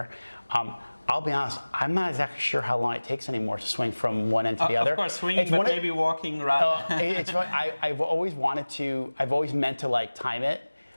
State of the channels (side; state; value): both; inverted; correlation -1.00